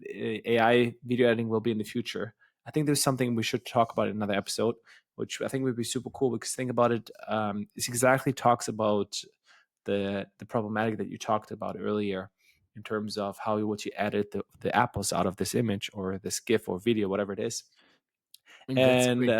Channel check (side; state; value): both; identical; correlation 1.00